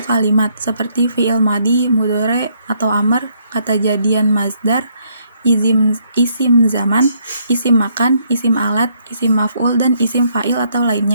kalimat, seperti fi'il madi, mudhari atau amr, kata jadian mazdar, isim zaman, isim makan, isim alat, isim maf'ul, dan isim fa'il atau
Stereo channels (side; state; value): both; inverted; correlation -0.71